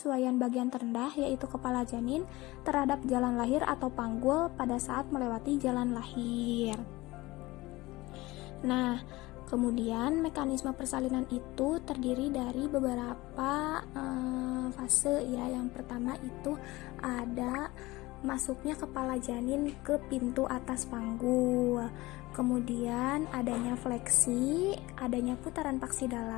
bagian terendah yaitu kepala janin terhadap jalan lahir atau panggul pada saat melewati jalan lahir. Nah, kemudian mekanisme persalinan itu terdiri dari beberapa fase ya. Yang pertama itu ada masuknya kepala janin ke pintu atas panggul. Kemudian adanya fleksi, adanya putaran paksi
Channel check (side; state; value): right; quieter; 20.3 dB